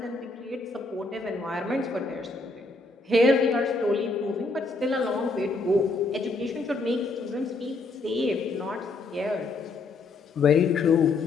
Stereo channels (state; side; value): quieter; right; 3.5 dB